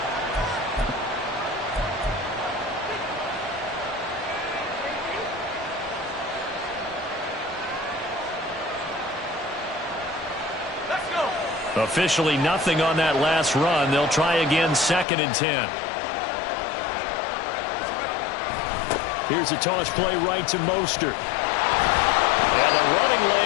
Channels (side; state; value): right; drops out; at 15.1 s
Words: Officially nothing on that last run. They'll try again, 2nd and 10. Here's a toss play right to Mostert. And the running